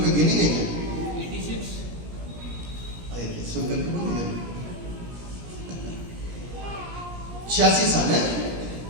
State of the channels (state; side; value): late; left; 17 ms